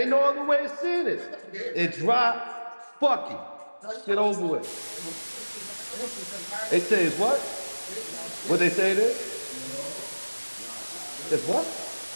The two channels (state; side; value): inverted; both; correlation -1.00